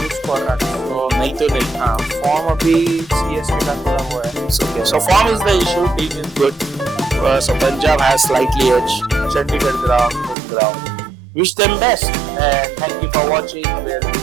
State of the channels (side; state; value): left; drops out; at 10.4 s